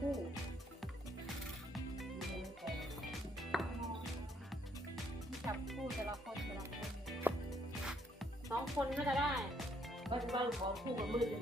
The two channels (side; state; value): both; normal; correlation 0.70